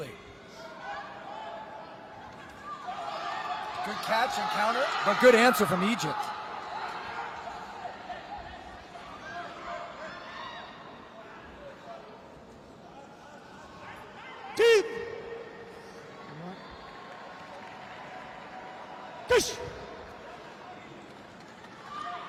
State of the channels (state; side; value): identical; both; correlation 1.00